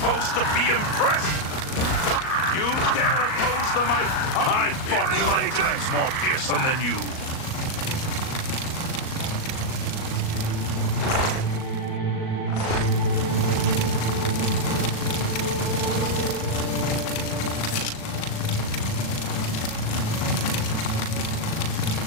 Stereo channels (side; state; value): right; late; 38 ms